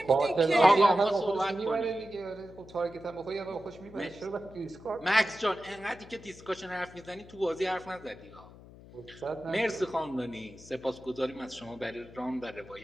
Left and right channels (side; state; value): left; noise; hum, 19 dB below the sound